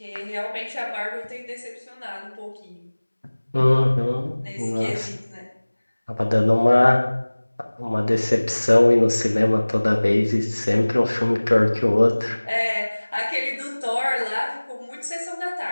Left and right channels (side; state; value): both; inverted; correlation -1.00